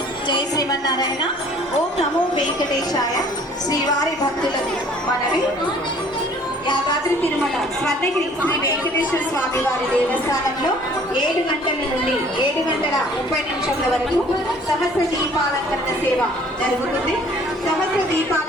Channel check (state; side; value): normal; both; correlation 0.55